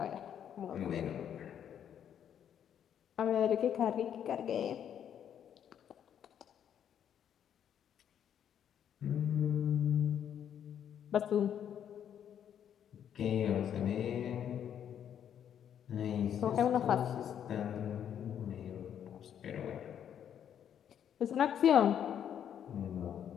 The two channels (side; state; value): right; quieter; 9.2 dB